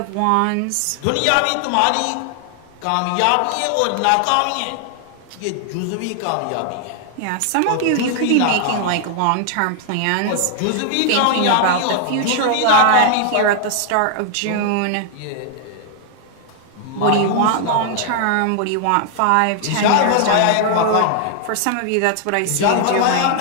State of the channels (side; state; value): both; different; correlation 0.00